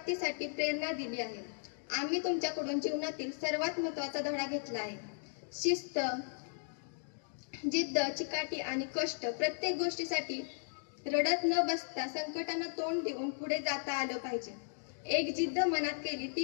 प्रेरणा दिली आहे. आम्ही तुमच्याकडून जीवनातील सर्वात महत्त्वाचा धडा घेतला आहे. शिस्त, जिद्द, चिकाटी आणि कष्ट. प्रत्येक गोष्टीसाठी रडत न बसता संकटांना तोंड देऊन पुढे जाता आलं पाहिजे. एक जिद्द मनात केली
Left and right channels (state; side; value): silent; right; digital silence